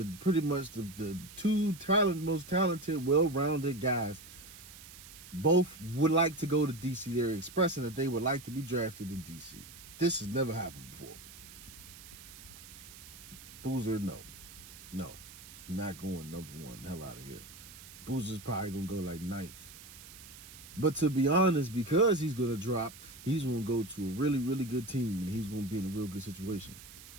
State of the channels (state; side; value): noise; right; hiss, 17 dB below the sound